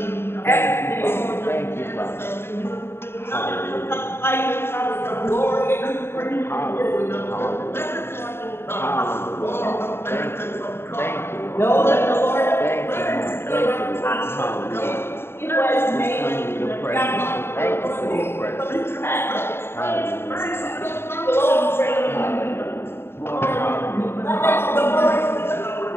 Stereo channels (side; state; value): right; late; 0.11 ms